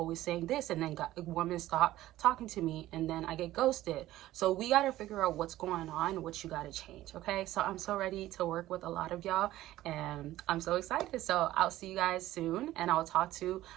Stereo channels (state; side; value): quieter; left; 15.2 dB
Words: saying this, and then women stop talking to me, and then I get ghosted. So we got to figure out what's going on, what you got to change. Okay, so I'm so ready to work with a lot of y'all, and I'm so excited. So I'll see you guys soon, and I'll talk to